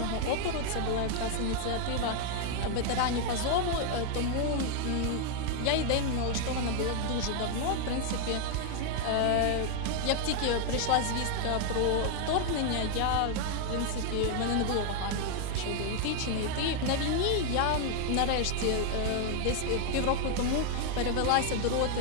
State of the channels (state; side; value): different; both; correlation 0.00